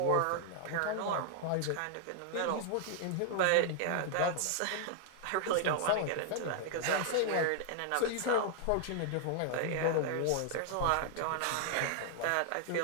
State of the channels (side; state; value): both; different; correlation 0.00